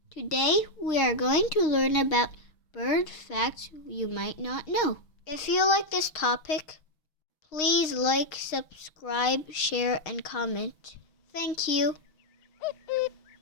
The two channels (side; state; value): right; late; 6.4 ms